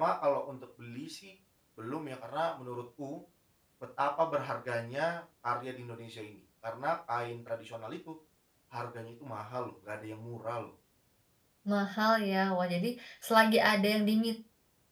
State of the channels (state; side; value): identical; both; correlation 1.00